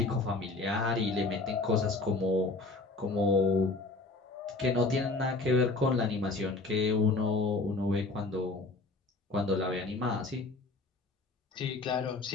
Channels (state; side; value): quieter; right; 3.3 dB